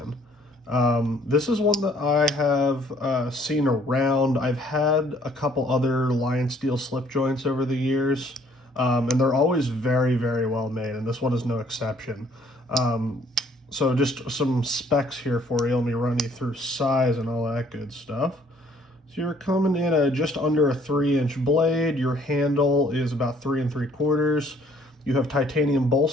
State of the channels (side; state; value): both; normal; correlation 0.60